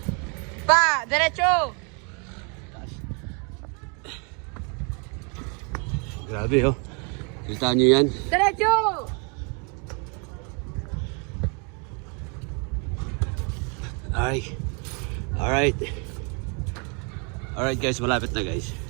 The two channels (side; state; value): left; quieter; 35.4 dB